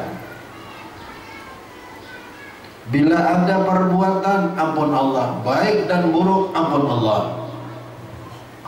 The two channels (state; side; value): identical; both; correlation 1.00